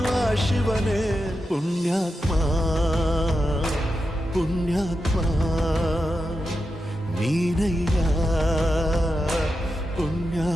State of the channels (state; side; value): normal; both; correlation 0.88